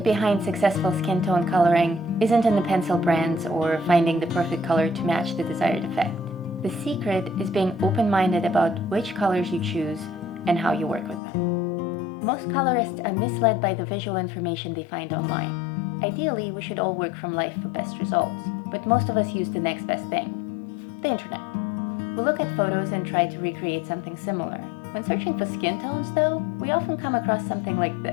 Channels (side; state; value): right; drops out; at 11.2 s